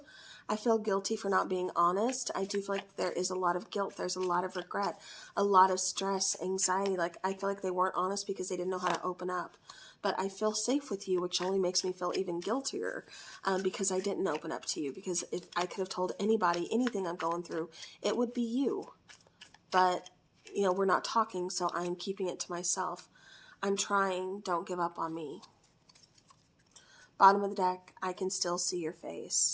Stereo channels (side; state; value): both; identical; correlation 1.00